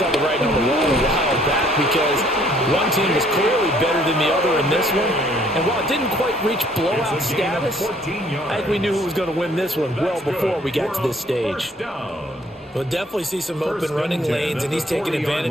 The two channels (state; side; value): normal; both; correlation 0.61